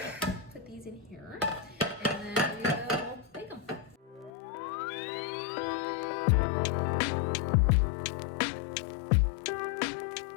put these in here, and then we will bake them.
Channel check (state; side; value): drops out; right; at 4.3 s